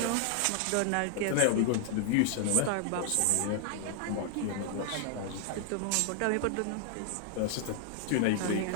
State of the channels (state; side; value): different; both; correlation 0.00